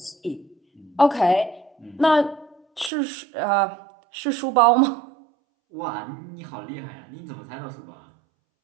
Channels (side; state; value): left; drops out; at 2.9 s